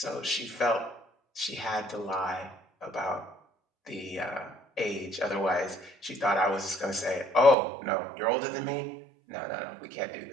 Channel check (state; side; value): drops out; left; at 7.6 s